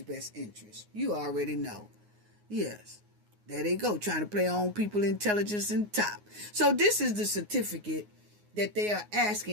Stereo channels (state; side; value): late; left; 9.6 ms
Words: best interest. You already know. Yes. There they go, trying to play on people intelligence and top. So this is the certificate that they are